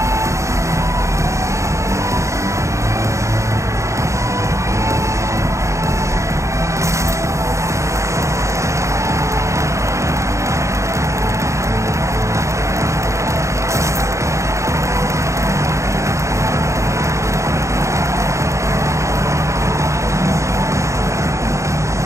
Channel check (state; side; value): late; left; 0.14 ms